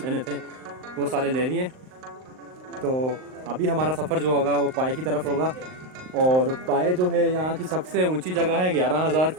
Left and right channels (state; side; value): late; left; 38 ms